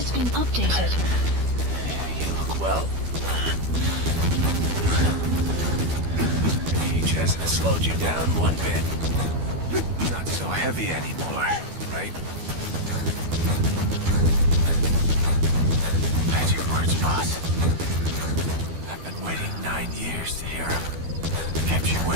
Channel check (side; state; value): left; late; 12 ms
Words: been updated. You look well. Age hasn't slowed you down one bit. Not so heavy anymore, right? Magic words, boss. I've been waiting 9 years to hear them. Kept you